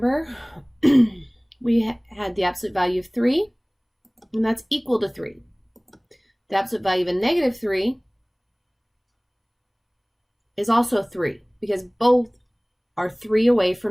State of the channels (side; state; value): both; identical; correlation 1.00